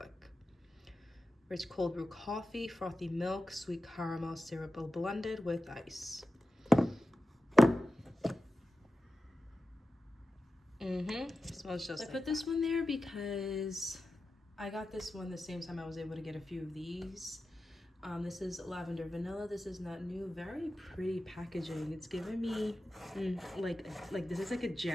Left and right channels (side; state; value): both; normal; correlation 0.93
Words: Rich cold brew coffee, frothy milk, sweet caramel syrup blended with ice. Smells just like. I put this one there because I got this one the same time I was able to get a few of these. This is lavender vanilla. This is not new. Very pretty packaging. It's giving me like this is like a